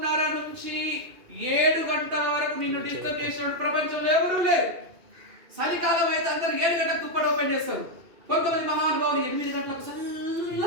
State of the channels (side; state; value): left; late; 2.5 ms